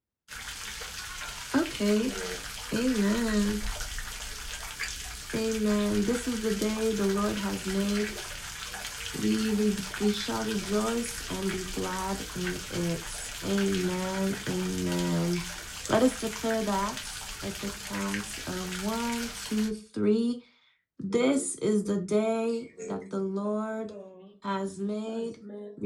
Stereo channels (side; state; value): both; identical; correlation 1.00